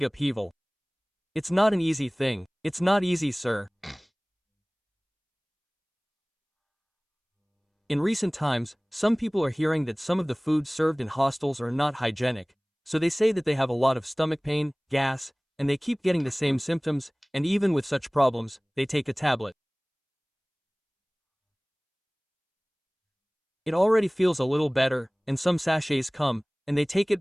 upheaval. It's not an easy thing. It's not easy, sir. In recent times, some people are hearing that some of the foods served in hostels are not hygienic, so they say that they have a lot of stomach pain, gas, and they keep getting the same symptoms, and even with such problems, they take a tablet. It already feels a little better, and some sachets come, and they take it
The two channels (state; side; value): identical; both; correlation 1.00